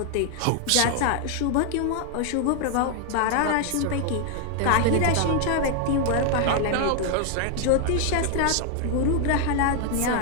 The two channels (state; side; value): different; both; correlation 0.00